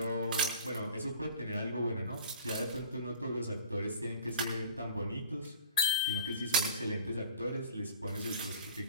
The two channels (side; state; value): both; inverted; correlation -0.43